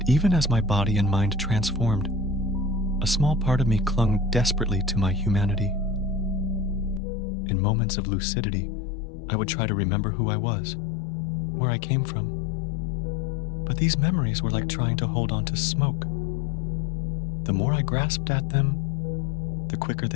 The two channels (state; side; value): drops out; right; at 7.0 s